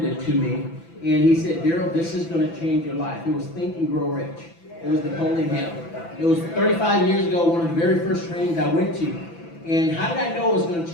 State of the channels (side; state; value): right; late; 6.0 ms